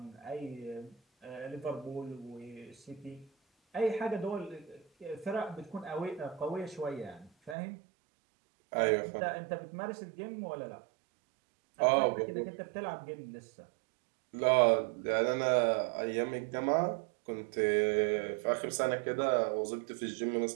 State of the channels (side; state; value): left; drops out; at 7.6 s